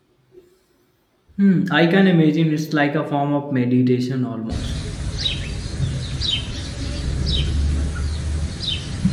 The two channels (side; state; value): both; identical; correlation 1.00